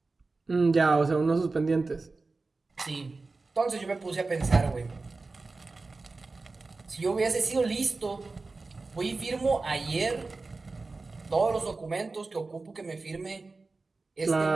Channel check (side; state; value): left; quieter; 3.7 dB